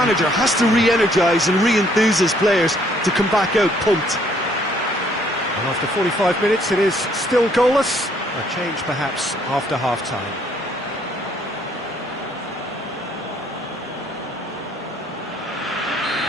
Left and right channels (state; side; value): normal; both; correlation 0.65